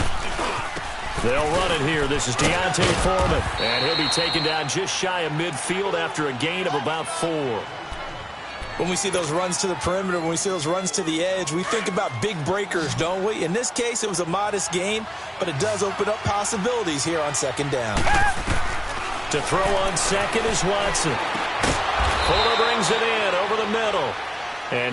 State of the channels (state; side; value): identical; both; correlation 1.00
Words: They'll run it here. This is Deontay Foreman. And he'll be taken down just shy of midfield after a gain of about 4. When we see those runs to the perimeter, when we see those runs to the edge, we think about big breakers, don't we? In this case, it was a modest gain, but it does open up possibilities here on second down. To throw on second is Watson. Fuller brings it in over the middle.